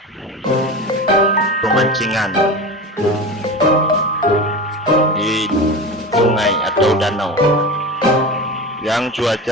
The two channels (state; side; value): normal; both; correlation 0.27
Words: pemancingan di sungai atau danau yang